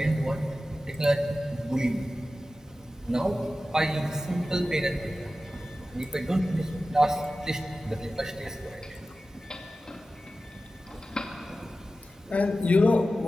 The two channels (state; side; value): normal; both; correlation 0.94